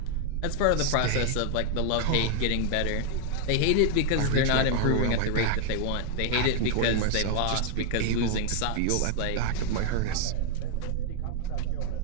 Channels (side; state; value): both; different; correlation 0.00